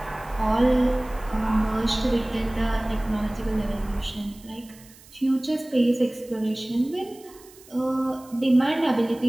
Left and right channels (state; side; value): noise; right; hiss, 23 dB below the sound